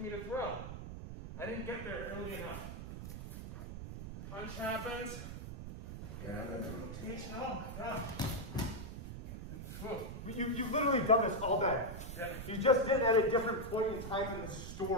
me to throw. I didn't get there early enough. Punch happens. Yeah, and then the rotation. Oh my God. You've literally done this all day. Yeah. You just did it at a different point in time in the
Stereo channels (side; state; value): right; noise; rumble, 8 dB below the sound